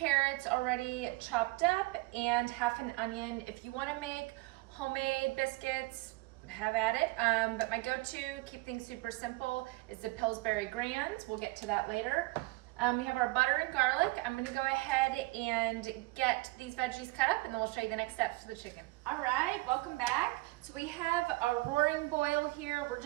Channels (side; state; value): left; quieter; 22.3 dB